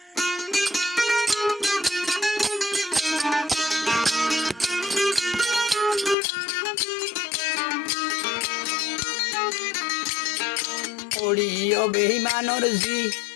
ওড়িও বেইমানর জি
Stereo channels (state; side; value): drops out; right; at 6.2 s